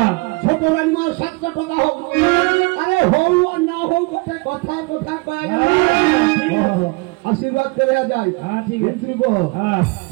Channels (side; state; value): left; quieter; 26.7 dB